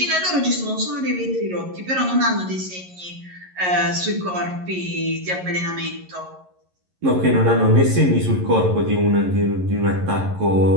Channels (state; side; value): late; left; 11 ms